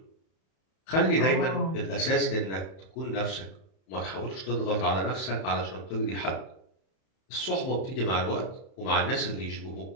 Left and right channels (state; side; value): late; right; 31 ms